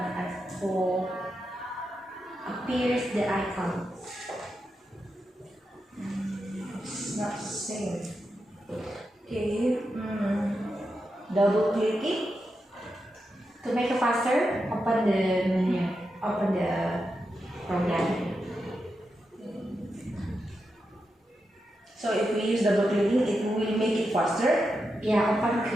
for appears the icon. It's not the same. Okay. Double clicking. To make it faster, open the menu, open the program. So if we use double clicking, it will make it faster. Yeah, open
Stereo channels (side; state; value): both; normal; correlation 0.87